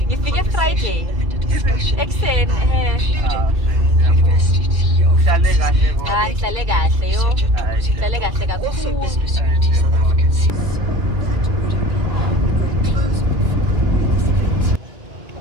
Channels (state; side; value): late; left; 2.3 ms